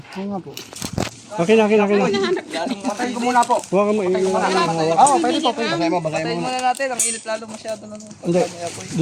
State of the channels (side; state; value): both; identical; correlation 1.00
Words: Oo nga po. Akin. Patayin ko muna po. Huwag ka mo Oo, pwede po. Basahin mo Patayin muna natin. Ang init lalo masyado na. Hindi,